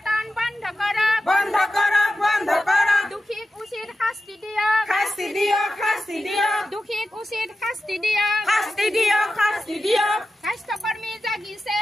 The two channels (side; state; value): both; normal; correlation 0.92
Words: বন্ধ করো, বন্ধ করো, বন্ধ করো, দুঃখীক উচিত শাস্তি দিও, শাস্তি দিও, শাস্তি দিও, দুঃখীক উচিত শাস্তি দিও, শাস্তি দিও, শাস্তি দিও। স্বাস্থ্যকর্মী জাগিছে,